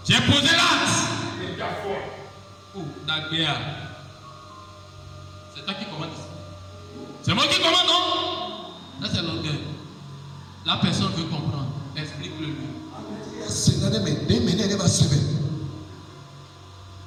J'ai posé l'acte. Oh, Dagbéa. C'est toi qui commandes ici. C'est moi qui commande, non? Là, c'est l'orgueil. La personne veut comprendre. Explique-le lui.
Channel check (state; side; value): identical; both; correlation 1.00